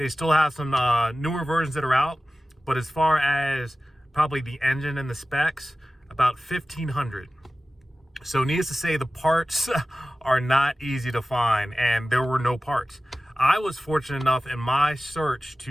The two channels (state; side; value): normal; both; correlation 0.96